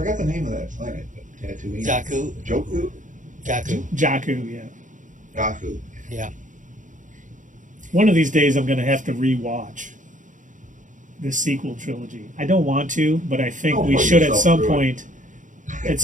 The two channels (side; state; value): left; late; 0.37 ms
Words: the name of that planet. Tatooine. Jakku. Joku? Jakku, yeah. Jakku. Yeah. One of these days I'm going to have to rewatch this sequel trilogy. I don't want to, but I think we should at some point